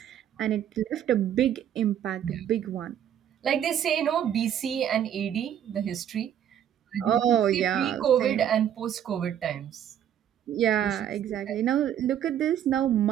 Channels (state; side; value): quieter; left; 10.0 dB